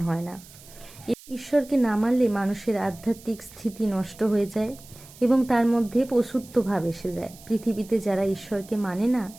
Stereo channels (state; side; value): noise; right; hiss, 21 dB below the sound